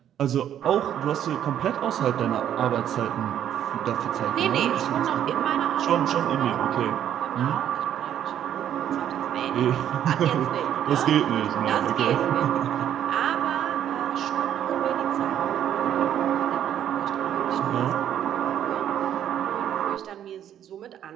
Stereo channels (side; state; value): left; quieter; 10.3 dB